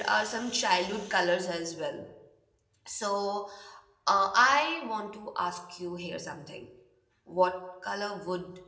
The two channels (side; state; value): both; identical; correlation 1.00